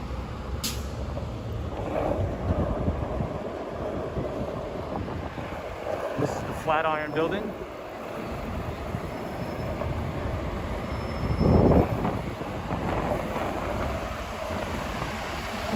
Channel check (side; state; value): both; identical; correlation 1.00